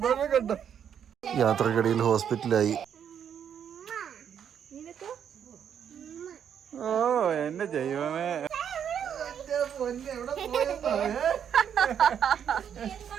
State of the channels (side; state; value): left; quieter; 8.5 dB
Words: കണ്ടോ. യാത്രക്കിടയിൽ ഹോസ്പിറ്റലായി. ഓ എന്റെ ദൈവമേ,